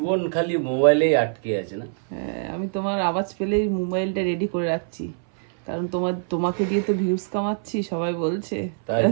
খালি মোবাইলেই আটকে আছে না? হ্যাঁ, আমি তোমার আওয়াজ পেলেই মোবাইলটা রেডি করে রাখছি, কারণ তোমাকে দিয়ে তো ভিউজ কামাচ্ছি, সবাই বলছে।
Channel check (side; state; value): left; silent; 60 dB below the other